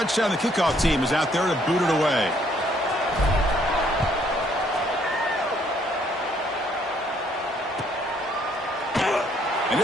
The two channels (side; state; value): both; normal; correlation 0.66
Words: the kickoff team is out there to boot it away. And